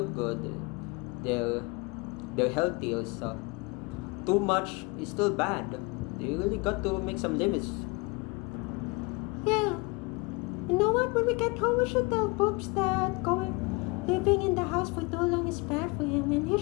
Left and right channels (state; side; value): quieter; right; 27.4 dB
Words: good, they're healthy also. Too much is still bad. You really got to make some limits. Yeah. You know what? When we get home, we should tell Poops that living in the house for too long is bad for him, and he